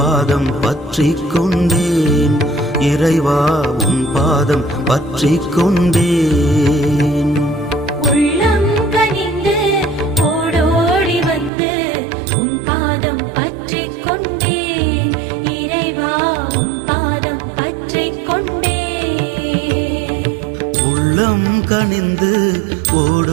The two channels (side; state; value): left; drops out; at 11.5 s